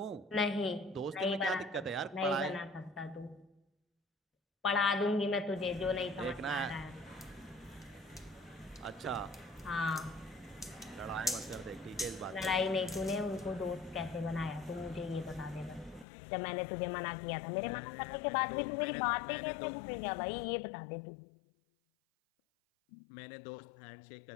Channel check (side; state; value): right; drops out; at 16.1 s